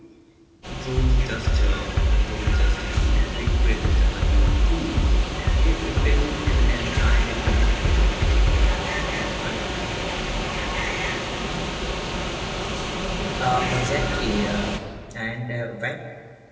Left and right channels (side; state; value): both; identical; correlation 1.00